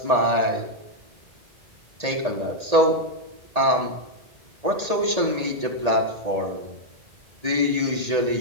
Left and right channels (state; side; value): late; left; 1.8 ms